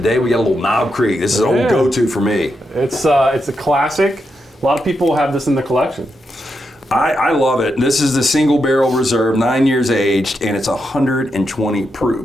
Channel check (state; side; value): normal; both; correlation 0.84